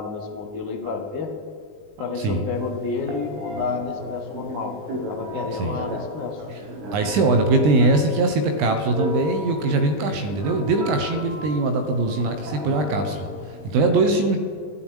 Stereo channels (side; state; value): left; late; 20 ms